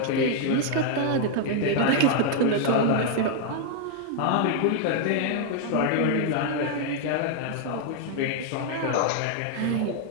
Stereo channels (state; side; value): different; both; correlation 0.00